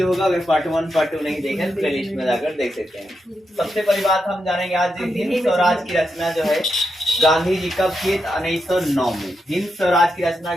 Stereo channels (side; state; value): both; normal; correlation 0.85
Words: होगा। अगर पार्ट 1 पार्ट 2 नहीं देखे तो प्लेलिस्ट में जाकर देख सकते हैं। सबसे पहली बात हम जानेंगे आज हिंद स्वराज की रचना जो है गांधी जी कब किए? 1909 में। हिंद स्वराज की रचना